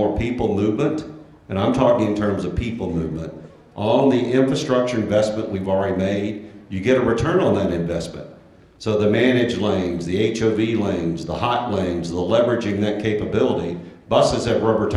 people movement, and I'm talking in terms of people movement, on the infrastructure investment we've already made, you get a return on that investment. So the managed lanes, the HOV lanes, the hot lanes, the leveraging that capability, buses have rubber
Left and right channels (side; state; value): both; identical; correlation 1.00